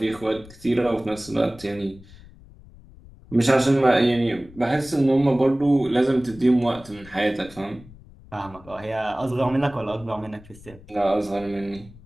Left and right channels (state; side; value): noise; left; rumble, 21 dB below the sound